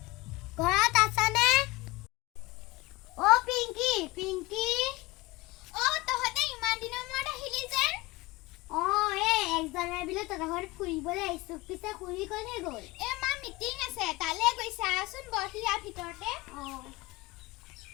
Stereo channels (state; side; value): quieter; right; 21.3 dB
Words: ঘৰত আছানে পিংকি তহঁতে ইমান দিনৰ মূৰত আহিলি যেন 1 জানুৱাৰী বুলি তহঁতৰ ঘৰত ফুৰিবলৈ আহিছোঁ পিছে খুৰী ক'লে গ'ল মা মিটিং আছে তালৈ গৈছে আচোন বহি ইয়াৰ ভিতৰতে